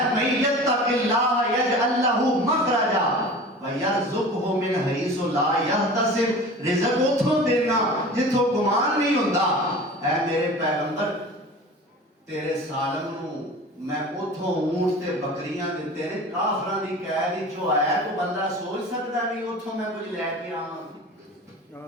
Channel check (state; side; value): normal; both; correlation 0.38